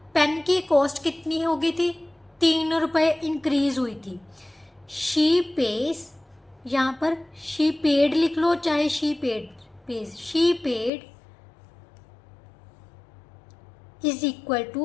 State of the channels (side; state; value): right; drops out; at 10.9 s